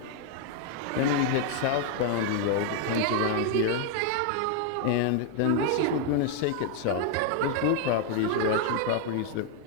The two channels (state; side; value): different; both; correlation 0.00